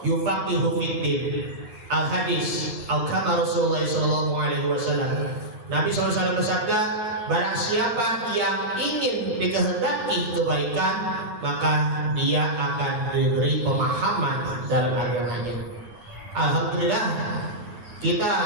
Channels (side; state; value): left; late; 9.6 ms